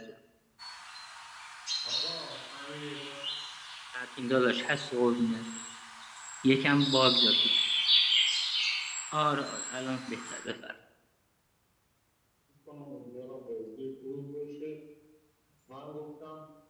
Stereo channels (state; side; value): identical; both; correlation 1.00